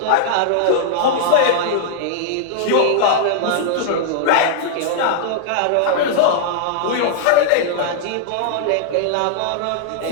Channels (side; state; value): both; different; correlation -0.01